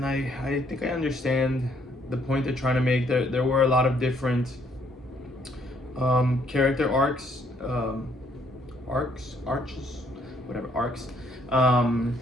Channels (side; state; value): both; normal; correlation 0.68